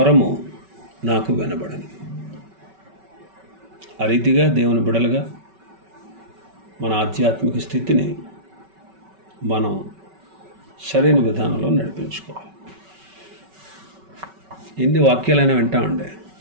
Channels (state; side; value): late; left; 5.3 ms